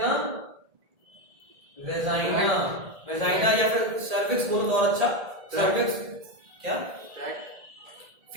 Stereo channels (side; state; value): left; late; 1.7 ms